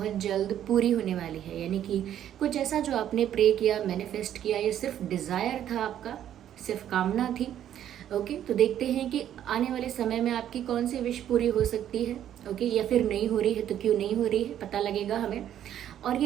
जल्द पूरी होने वाली है। यानी कि कुछ ऐसा जो आपने प्रे किया, मैनिफेस्ट किया, ये सिर्फ डिज़ायर था, आपका सिर्फ कामना थी। ओके, तो देखते हैं कि आने वाले समय में आपकी कौन सी विश पूरी हो सकती है। ओके, या फिर नहीं हो रही है तो क्यों नहीं हो रही है, पता लगेगा हमें। और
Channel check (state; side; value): quieter; left; 10.8 dB